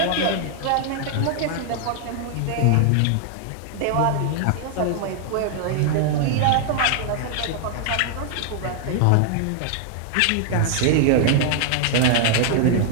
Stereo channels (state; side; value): different; both; correlation 0.00